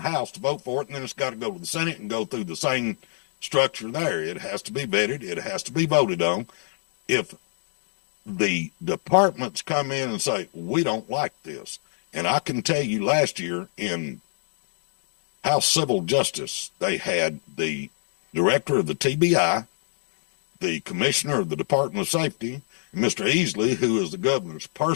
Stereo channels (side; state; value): right; silent; digital silence